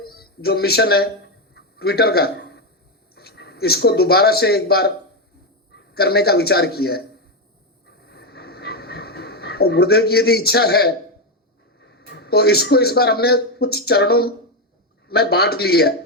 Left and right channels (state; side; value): normal; both; correlation 0.07